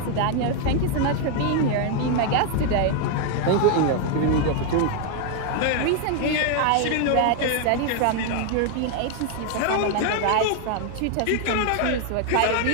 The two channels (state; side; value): different; both; correlation 0.00